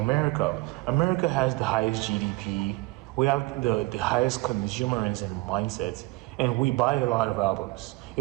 America has the highest GDP. We have the highest consumerism mindset, and we buy a lot of albums.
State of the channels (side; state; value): left; quieter; 22.4 dB